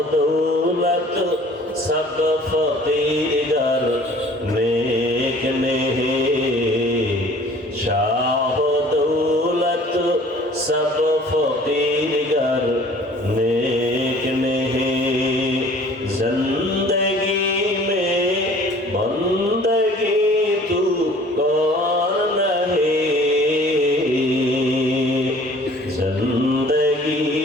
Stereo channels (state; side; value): normal; both; correlation 0.51